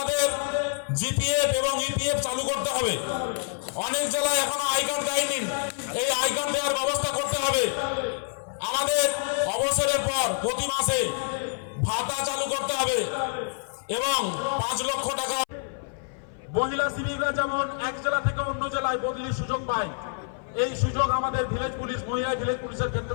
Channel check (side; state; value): right; silent; 57 dB below the other